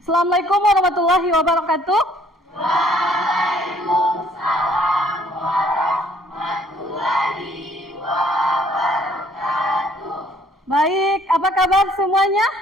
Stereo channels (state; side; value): normal; both; correlation 0.62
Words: Assalamualaikum warahmatullahi wabarakatuh. Waalaikumsalam warahmatullahi wabarakatuh. Baik, apa kabar semuanya?